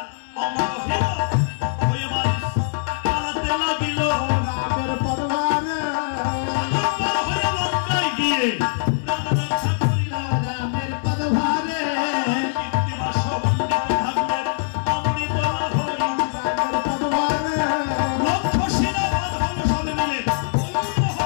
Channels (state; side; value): silent; right; digital silence